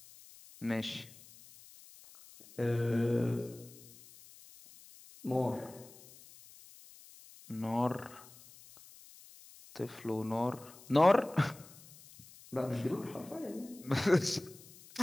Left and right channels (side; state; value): left; noise; hiss, 21 dB below the sound